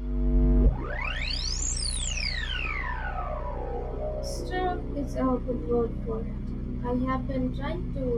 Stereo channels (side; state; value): both; identical; correlation 1.00